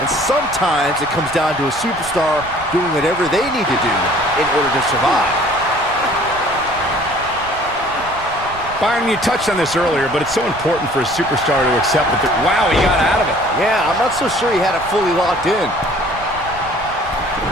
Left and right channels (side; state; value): right; noise; rumble, 16 dB below the sound